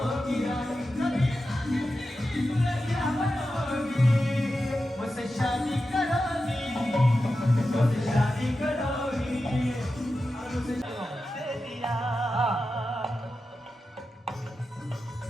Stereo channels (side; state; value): both; normal; correlation 0.91